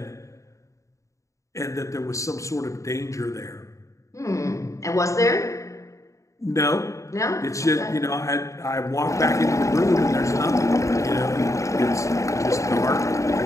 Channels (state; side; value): late; right; 0.15 ms